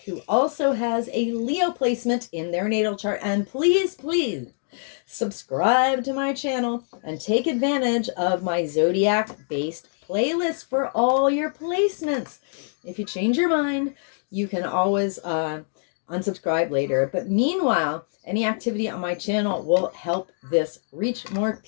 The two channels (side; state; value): right; silent; digital silence